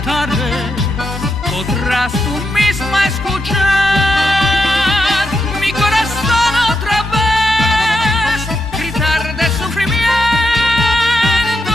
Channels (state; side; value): normal; both; correlation 0.84